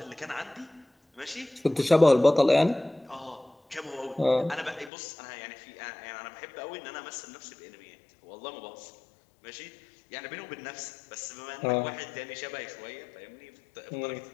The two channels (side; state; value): right; drops out; at 4.9 s